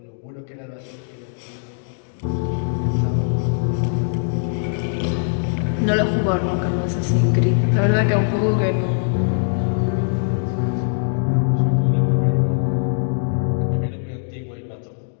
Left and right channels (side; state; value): right; silent; digital silence